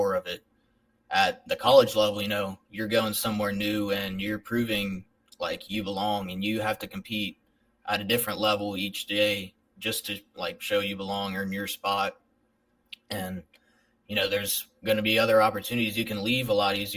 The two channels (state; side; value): identical; both; correlation 1.00